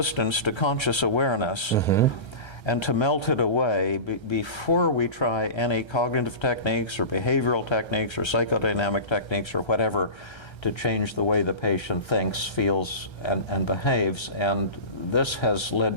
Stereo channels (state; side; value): late; right; 1.3 ms